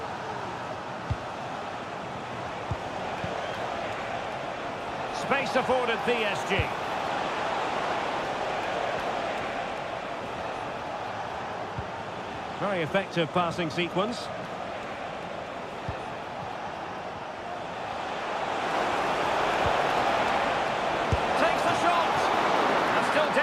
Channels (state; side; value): identical; both; correlation 1.00